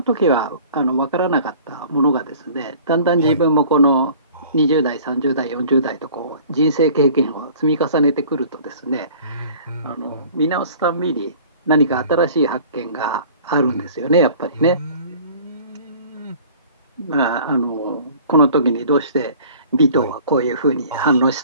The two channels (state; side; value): inverted; both; correlation -0.48